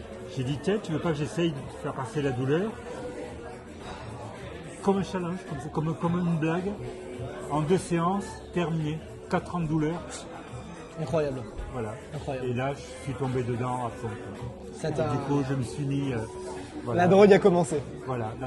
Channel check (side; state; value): both; identical; correlation 1.00